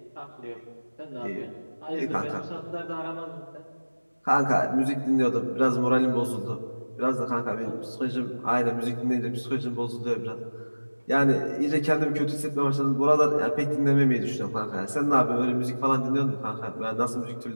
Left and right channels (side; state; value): both; inverted; correlation -1.00